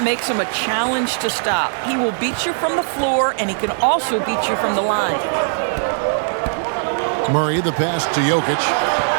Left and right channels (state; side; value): silent; left; 66 dB below the other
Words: makes him a challenge to stop. He will beat you from the floor, and he can also beat you from the line. Murray, the pass to Jokic.